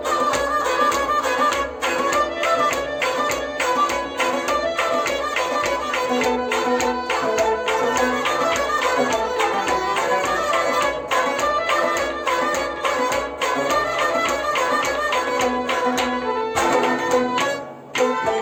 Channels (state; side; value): identical; both; correlation 1.00